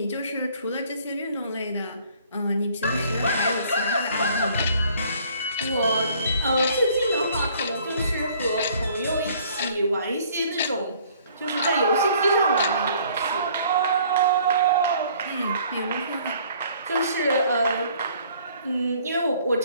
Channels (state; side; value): inverted; both; correlation -0.58